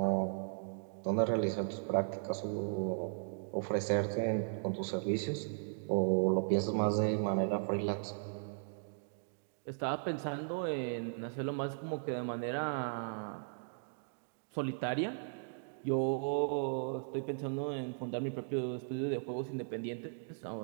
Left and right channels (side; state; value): left; silent; digital silence